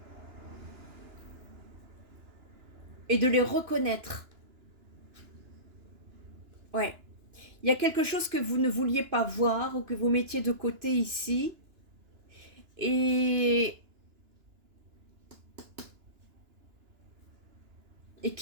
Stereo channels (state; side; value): late; left; 2.9 ms